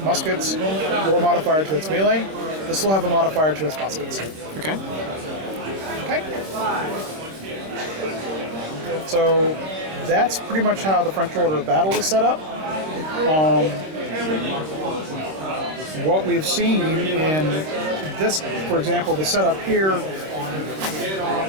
muskets or modifier to its melee. This will have a modifier to its muskets. Okay. Okay. So that's pretty much how the French order of battle is set up. What we've seen in this, for example, the setup here,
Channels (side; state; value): left; late; 26 ms